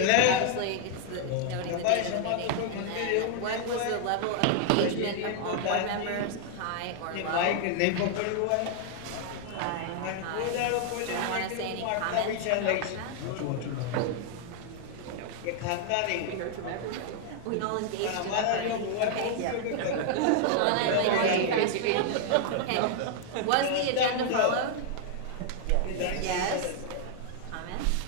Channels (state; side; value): different; both; correlation 0.00